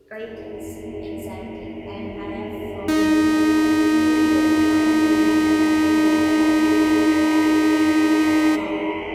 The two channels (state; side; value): identical; both; correlation 1.00